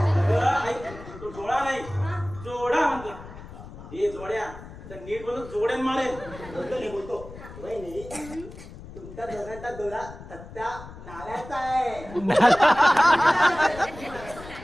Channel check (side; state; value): left; noise; rumble, 15 dB below the sound